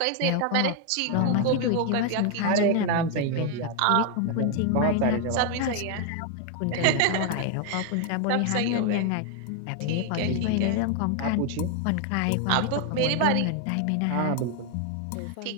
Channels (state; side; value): different; both; correlation 0.01